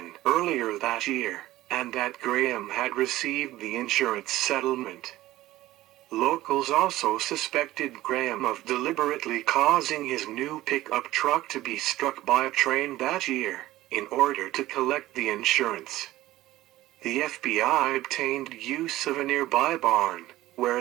earlier that year, and that Graham had received the insurance settlement. Locals also suspected Graham of deliberately causing his new pickup truck to be struck by a train that year, in order to collect the insurance. The FBI obtained use of a nearby barn,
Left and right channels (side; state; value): left; quieter; 16.1 dB